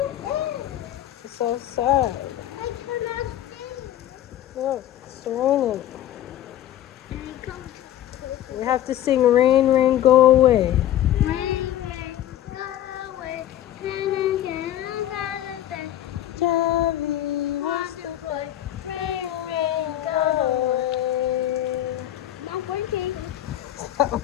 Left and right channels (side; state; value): right; quieter; 12.3 dB